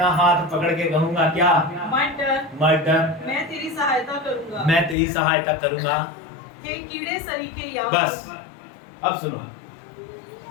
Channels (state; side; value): drops out; right; at 5.0 s